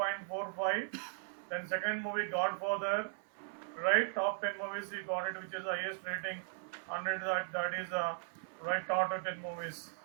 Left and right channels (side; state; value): left; silent; 53 dB below the other